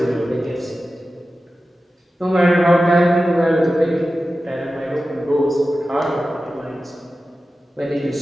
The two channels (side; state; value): both; normal; correlation 0.94